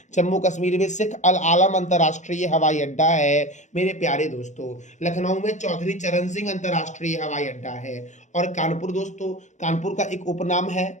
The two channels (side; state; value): right; late; 0.35 ms